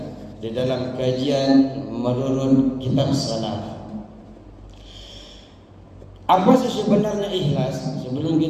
di dalam kajian menurut kitab salaf. Apa sih sebenarnya ikhlas? Sebelum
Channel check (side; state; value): both; identical; correlation 1.00